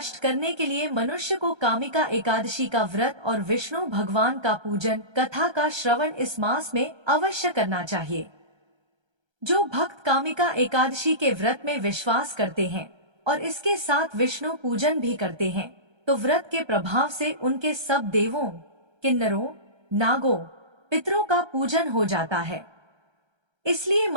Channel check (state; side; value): late; left; 1.3 ms